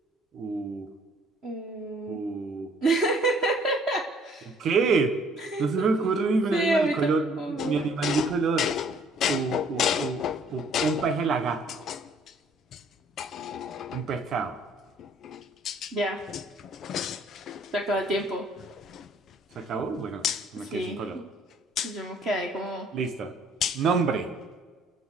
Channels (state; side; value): normal; both; correlation 0.59